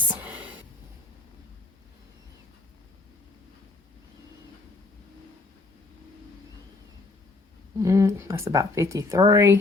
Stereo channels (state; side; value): quieter; right; 3.5 dB